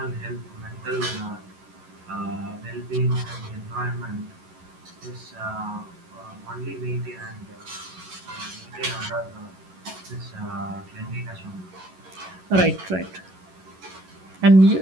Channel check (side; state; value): left; late; 11 ms